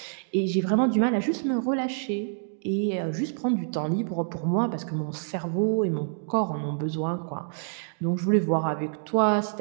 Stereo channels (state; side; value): silent; left; digital silence